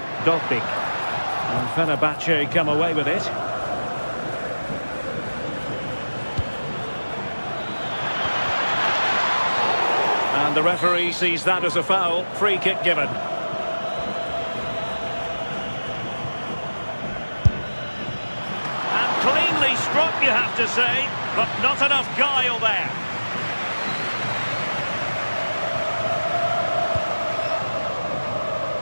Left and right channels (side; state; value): both; inverted; correlation -1.00